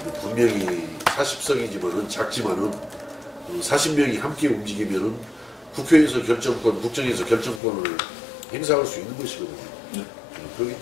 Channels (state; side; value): drops out; right; at 7.6 s